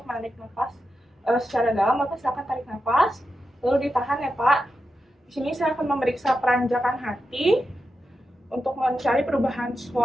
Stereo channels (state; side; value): normal; both; correlation 0.89